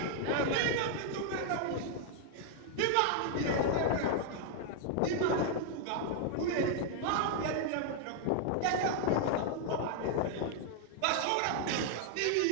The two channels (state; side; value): different; both; correlation 0.00